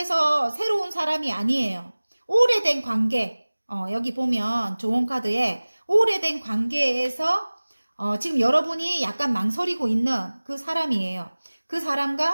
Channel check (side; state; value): both; inverted; correlation -1.00